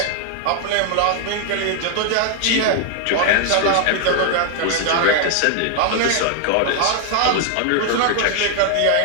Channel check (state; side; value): different; both; correlation 0.00